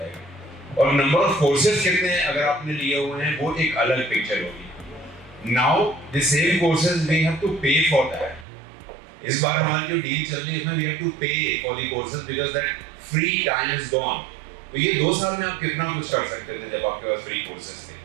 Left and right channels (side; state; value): left; drops out; at 8.5 s